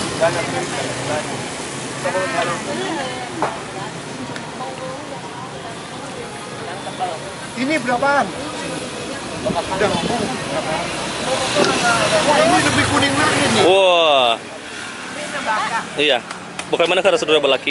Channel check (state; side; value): identical; both; correlation 1.00